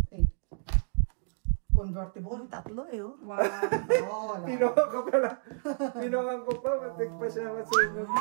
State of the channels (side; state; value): left; silent; 58 dB below the other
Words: 8. Convertible. Tatlo eh, oh. Wow. Oo, Pinungan ko pala. Pinungan ko pa. Matik pa siya masungog.